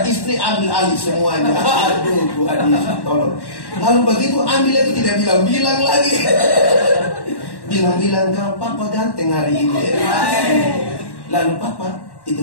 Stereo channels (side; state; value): right; late; 1.1 ms